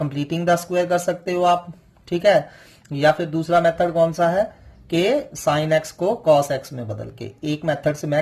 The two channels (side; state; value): both; identical; correlation 1.00